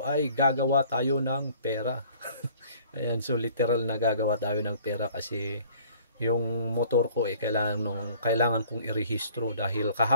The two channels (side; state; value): both; inverted; correlation -0.53